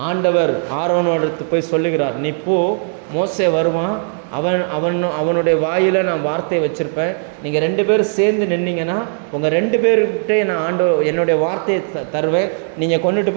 ஆண்டவர் ஆரோனோடு போய் சொல்லுகிறார், நீ போ, மோசே வருவான், அவனுடைய வாயில் நான் வார்த்தையை வச்சுருப்பேன், நீங்கள் 2 பேரும் சேர்ந்து நின்னீங்கன்னா உங்கள் 2 பேர்கிட்டே நான் என்னுடைய வார்த்தையை தருவேன், நீங்கள் கொண்டுட்டு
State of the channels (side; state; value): left; silent; 63 dB below the other